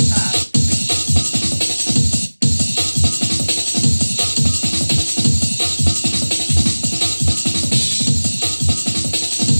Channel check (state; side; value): inverted; both; correlation -1.00